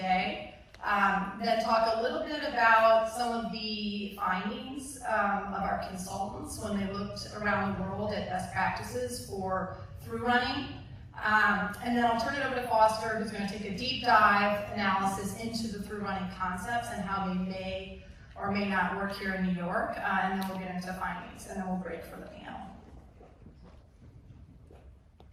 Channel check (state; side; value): identical; both; correlation 1.00